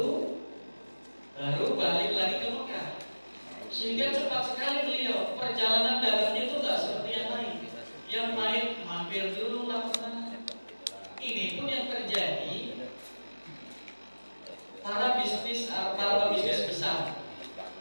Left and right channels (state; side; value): inverted; both; correlation -1.00